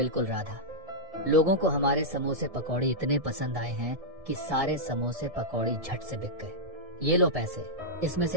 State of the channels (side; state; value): left; late; 1.7 ms